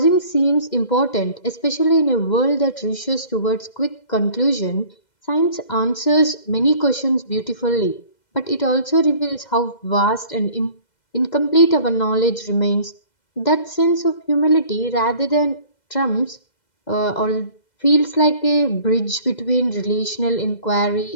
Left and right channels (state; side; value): late; right; 2.0 ms